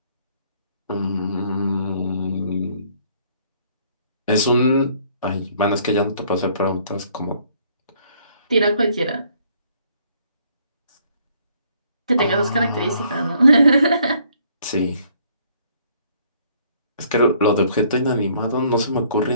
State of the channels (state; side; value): inverted; both; correlation -0.63